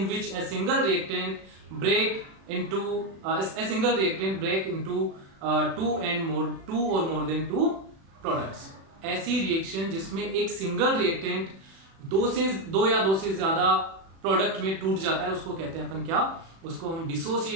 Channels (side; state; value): left; late; 36 ms